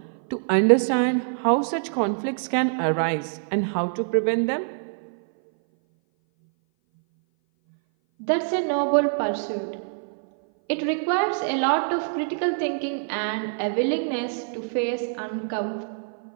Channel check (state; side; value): silent; left; 58 dB below the other